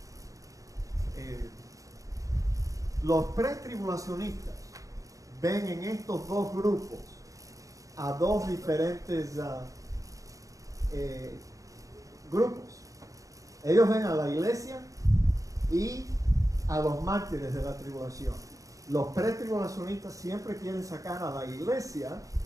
Los pretribulacionistas ven en estos 2 grupos a 2 diferentes grupos. Ellos ven a la iglesia y a los mártires de la tribulación. Los pretribulacionistas siempre quieren sacar a la iglesia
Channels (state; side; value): late; left; 0.16 ms